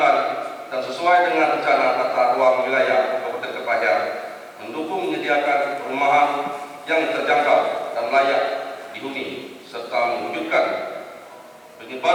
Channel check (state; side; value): identical; both; correlation 1.00